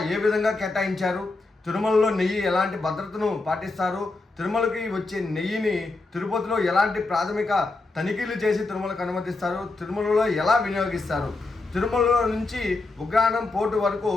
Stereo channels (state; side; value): quieter; right; 3.4 dB